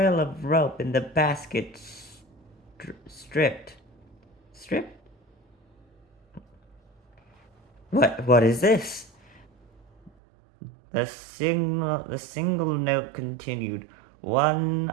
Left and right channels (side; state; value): left; drops out; at 10.1 s